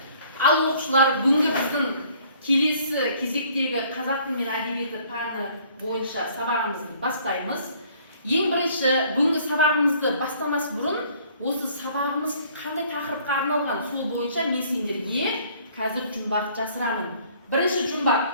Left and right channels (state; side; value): inverted; both; correlation -0.58